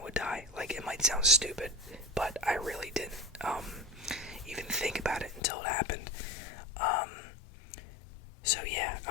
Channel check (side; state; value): right; drops out; at 5.4 s